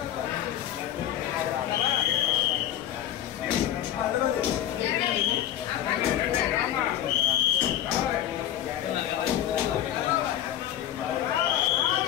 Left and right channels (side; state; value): right; quieter; 11.6 dB